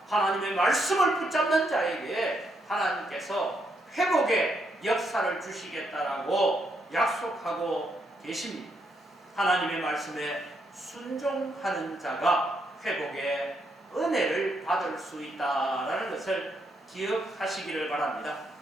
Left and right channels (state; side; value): normal; both; correlation 0.77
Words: 하나님의 말씀을 붙잡는 자에게 하나님께서 회복의 역사를 주시겠다라고 약속하고 계십니다. 하나님의 말씀에 순종하는 자가 회복의 은혜를 받을 수 있다라는 것을 기억하시기를 바랍니다.